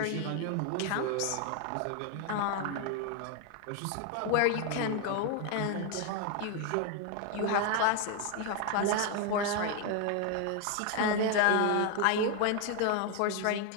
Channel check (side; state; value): both; different; correlation 0.01